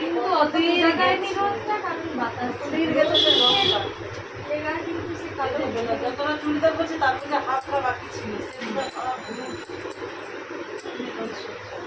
কিন্তু অত বোঝা যায়নি রোদটা, কারণ বাতাস শরীর গেছে যে রোদটা লেগা কিন্তু সে কালো যতটা চুড়িদার করছি তার থেকে হাতটা বাকি ছিল সেগুলো সব ঘুরে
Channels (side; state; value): both; identical; correlation 1.00